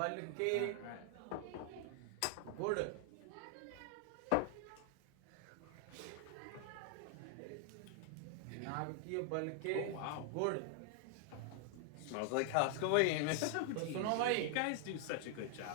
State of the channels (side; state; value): both; different; correlation 0.00